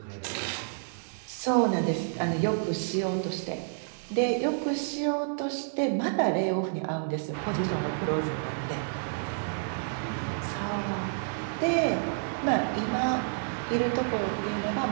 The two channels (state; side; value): silent; left; digital silence